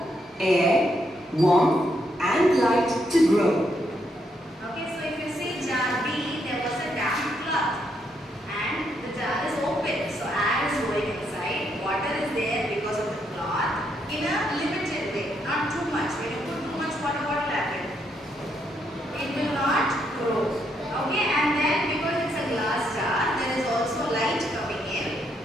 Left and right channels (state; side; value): normal; both; correlation 0.77